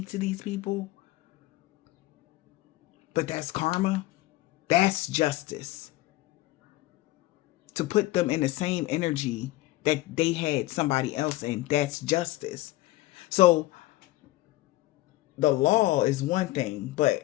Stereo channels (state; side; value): quieter; right; 17.8 dB